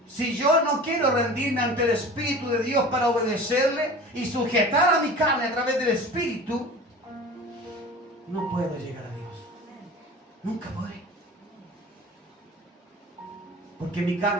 si yo no quiero rendirme ante el Espíritu de Dios para obedecerle y sujetar a mi carne a través del Espíritu, no puedo llegar a Dios. Nunca podré. Porque mi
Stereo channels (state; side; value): normal; both; correlation 0.38